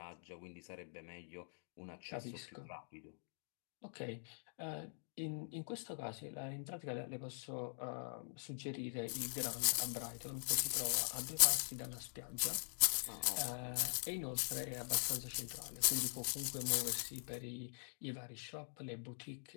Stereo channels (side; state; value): right; silent; digital silence